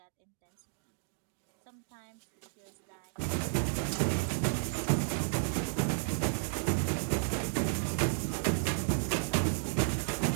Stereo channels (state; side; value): silent; left; digital silence